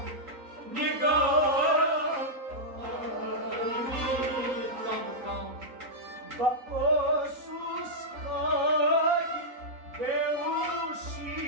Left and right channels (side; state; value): left; late; 3.9 ms